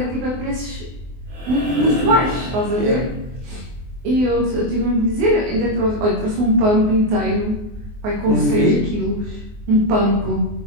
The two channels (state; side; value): late; left; 24 ms